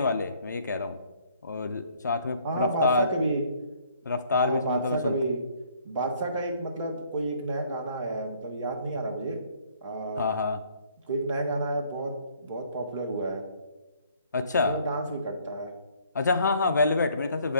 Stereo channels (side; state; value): both; inverted; correlation -0.61